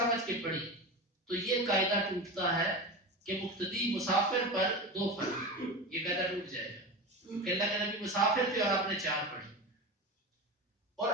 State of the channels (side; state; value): both; normal; correlation 0.25